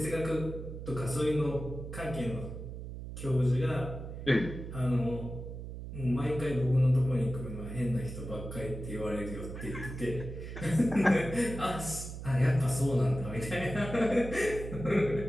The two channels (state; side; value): noise; right; hum, 9 dB below the sound